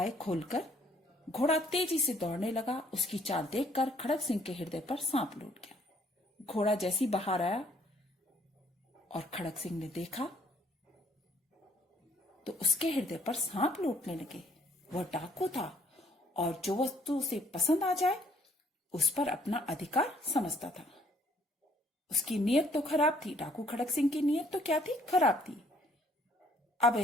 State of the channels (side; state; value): both; normal; correlation 0.63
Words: खोलकर घोड़ा तेजी से दौड़ने लगा। उसकी चाल देखकर खड़क सिंह के हृदय पर सांप लौट गया। घोड़ा जैसी बाहर आया और खड़क सिंह ने देखा तो उसके हृदय पर सांप लौटने लगे। वह डाकू था और जो वस्तु उसे पसंद आ जाए उस पर अपना अधिकार समझता था। उसकी नीयत तो खराब थी। डाकू खड़क सिंह की नीयत तो क्या थी? खराब थी। अब